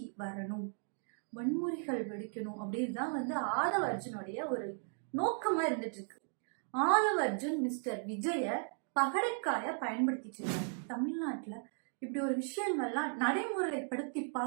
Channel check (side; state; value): left; silent; 54 dB below the other